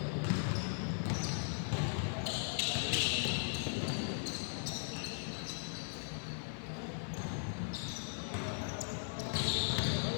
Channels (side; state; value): right; silent; digital silence